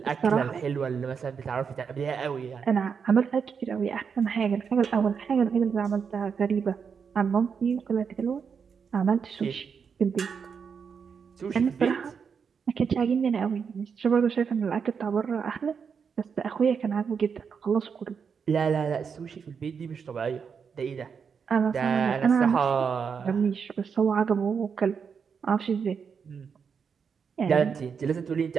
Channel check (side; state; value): left; quieter; 6.3 dB